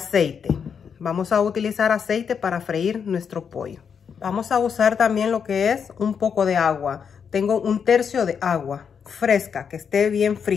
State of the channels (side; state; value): right; quieter; 6.9 dB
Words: Vamos a utilizar aceite para freír nuestro pollo. Vamos a usar también lo que es un poco de agua. Tengo 1/3 de agua fresca, que esté bien